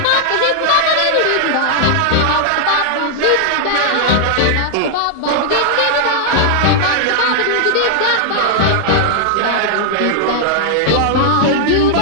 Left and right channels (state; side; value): different; both; correlation 0.00